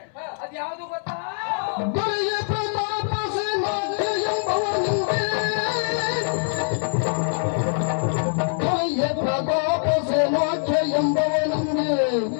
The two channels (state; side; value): silent; right; 63 dB below the other